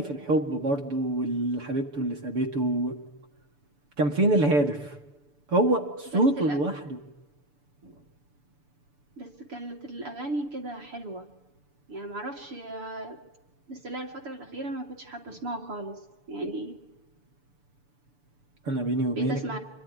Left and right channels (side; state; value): left; late; 6.9 ms